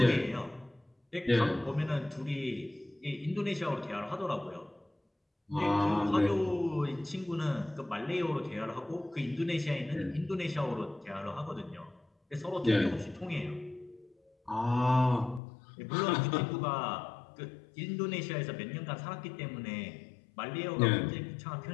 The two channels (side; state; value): right; drops out; at 15.4 s